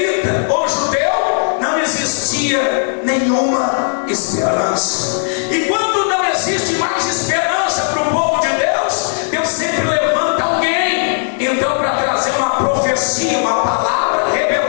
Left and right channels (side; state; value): right; silent; 57 dB below the other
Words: ou judeu não existia nenhuma esperança. E quando não existe mais esperança para o povo de Deus, Deus sempre levanta alguém então para trazer uma profecia, uma palavra